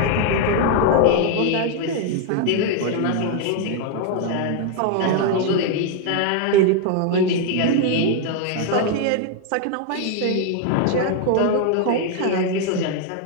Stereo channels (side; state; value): both; different; correlation 0.00